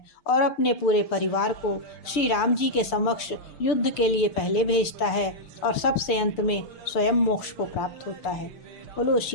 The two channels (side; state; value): right; late; 6.8 ms